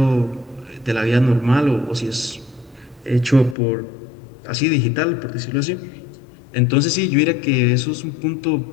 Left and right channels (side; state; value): right; drops out; at 3.6 s